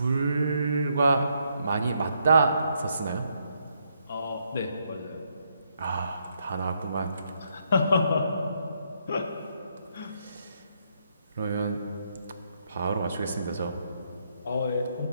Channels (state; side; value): inverted; both; correlation -0.76